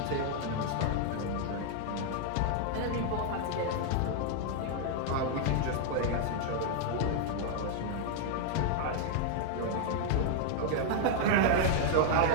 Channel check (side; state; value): both; different; correlation 0.00